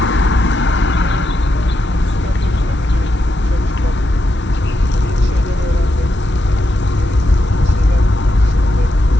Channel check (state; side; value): normal; both; correlation 0.84